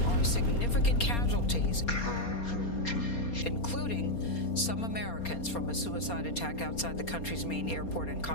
are significant casualties, including some Americans from a suicide attack outside the country's main airport in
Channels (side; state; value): right; late; 4.3 ms